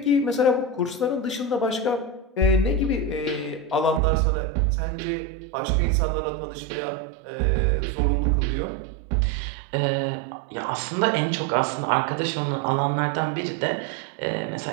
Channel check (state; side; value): drops out; left; at 4.0 s